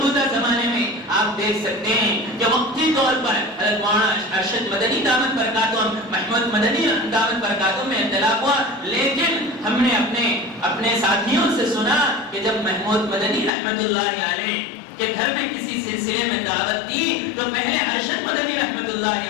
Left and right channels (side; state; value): right; drops out; at 13.5 s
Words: زمانے میں آپ دیکھ سکتے ہیں کہ وقتی طور پر حضرت مولانا ارشد مدنی دامت برکاتہم، محمود مدنی دامت برکاتہم میں اختلاف ہوا، لیکن ہم نے اپنے ساتھیوں سے سنا کہ جب محمود مدنی رحمت اللہ علیہ کے گھر میں کسی سلسلے میں دعوت دی تو پہلے ارشد مدنی رحمت